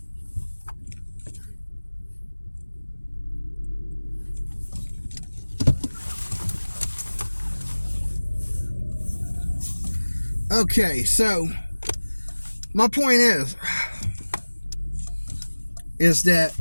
Okay, so my point is that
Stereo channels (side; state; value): both; inverted; correlation -1.00